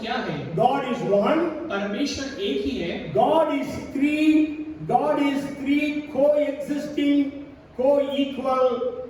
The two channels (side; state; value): both; identical; correlation 1.00